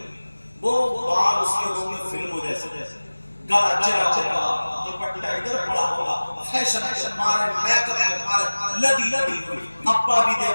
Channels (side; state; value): both; inverted; correlation -1.00